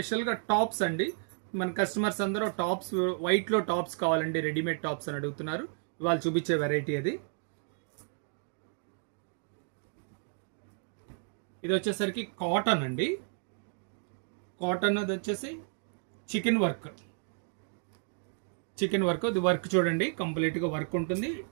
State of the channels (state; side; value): silent; left; 56 dB below the other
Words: టాప్స్ అండి. మన కస్టమర్స్ అందరూ టాప్స్ వైట్లో టాప్స్ కావాలండి, రెడీమేడ్ టాప్స్ అని అడుగుతున్నారు. ఇవాళ చూపించే వెరైటీ అది. ఇది వచ్చేసరికి కాటన్ అండి. కాటన్ అది వచ్చేసి చికెన్ వర్క్. ఇది వర్క్ చూడండి, కంప్లీట్గా వర్క్ ఉంటుంది.